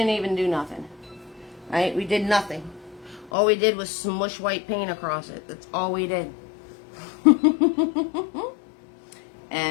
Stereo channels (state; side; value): drops out; right; at 3.3 s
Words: even do nothing. Right? We did nothing. All we did was smush white paint across it. That's all we did.